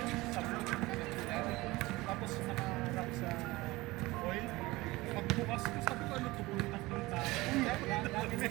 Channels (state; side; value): quieter; left; 20.6 dB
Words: Sabon. Tapos naka-wrap sa oil. Pagbukas ko, sabi ko ano ito? Tatlong tao.